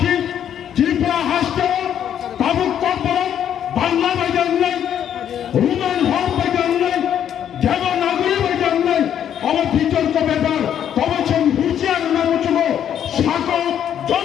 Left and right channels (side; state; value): right; quieter; 9.6 dB